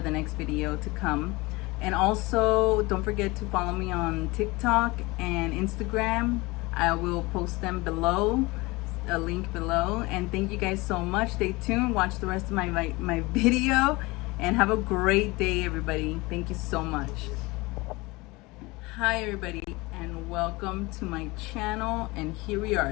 the next video to come. And also don't forget to follow me on TikTok and Instagram. I will post them below, a link below. And thank you guys so much. Stay tuned, watch the rest of my video, and have a great day, everybody. Thank you so much. Hi everybody, and welcome to my channel. And here we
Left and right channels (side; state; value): right; quieter; 23.0 dB